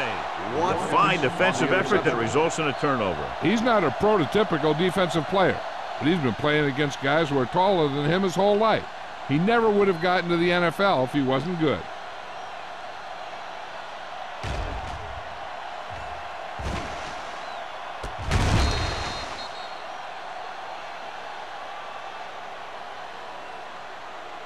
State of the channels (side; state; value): both; identical; correlation 1.00